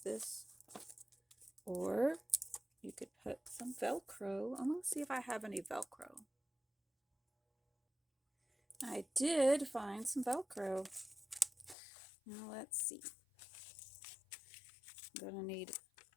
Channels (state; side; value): drops out; right; at 11.8 s